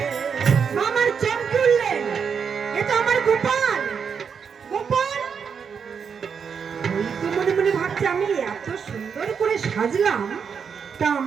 মামার চোখ খুললেন, এ তো আমার গোপাল, গোপাল। ওই তো মনে মনে ভাবছে আমি এত সুন্দর করে সাজলাম, তা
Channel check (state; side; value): quieter; left; 6.6 dB